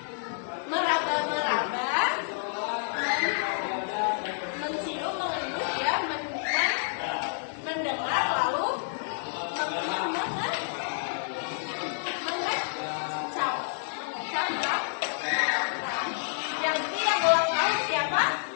meraba-meraba, mencium, mengendus ya, mendengar, lalu mengecap. Yang ketiga ulang tahun siapa?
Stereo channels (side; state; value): right; silent; 58 dB below the other